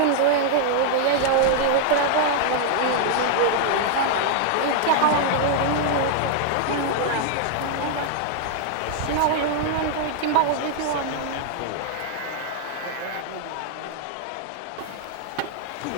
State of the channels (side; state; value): both; different; correlation 0.00